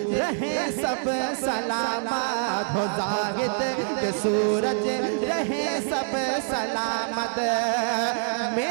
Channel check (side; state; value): left; silent; digital silence